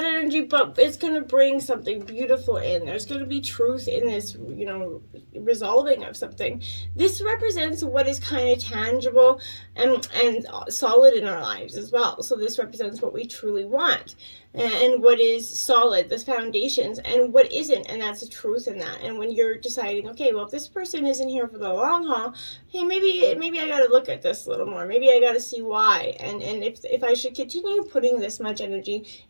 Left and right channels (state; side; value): inverted; both; correlation -1.00